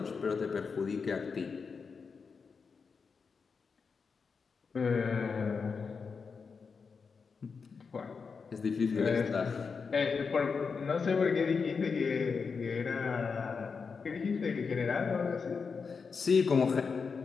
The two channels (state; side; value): quieter; right; 5.3 dB